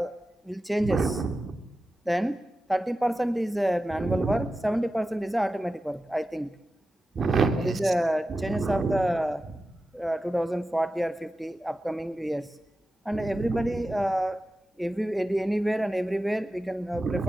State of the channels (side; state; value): both; normal; correlation 0.93